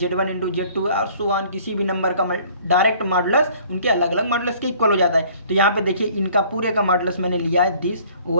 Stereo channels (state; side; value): inverted; both; correlation -0.55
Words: इंटू z2 और सो ऑन, किसी भी नंबर का डायरेक्ट मॉडुलस उनके अलग अलग मॉडुलस के इक्वल हो जाता है। तो यहाँ पे देखिए, इनका पूरे का मॉडुलस मैंने लिया है दिस